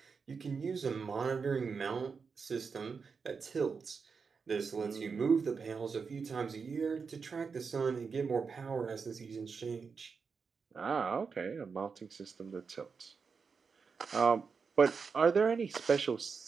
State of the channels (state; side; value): quieter; left; 5.4 dB